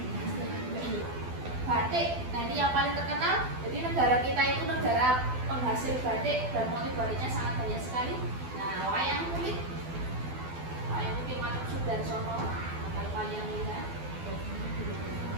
Batik. Nah, ini yang paling terkenal. Jadi negara kita itu negara penghasil batik dan motif batiknya sangat banyak sekali. Nah, wayang kulit. Wayang kulit Matuk Sudarsono. Wayang lihat.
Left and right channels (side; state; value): left; late; 12 ms